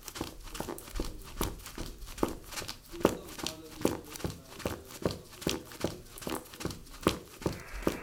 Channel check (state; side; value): identical; both; correlation 1.00